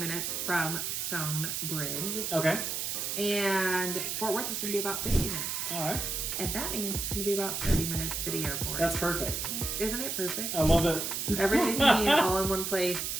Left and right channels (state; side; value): noise; right; hiss, 2 dB below the sound